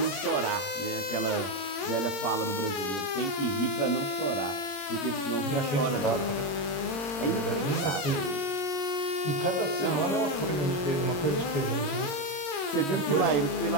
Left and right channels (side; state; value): right; late; 22 ms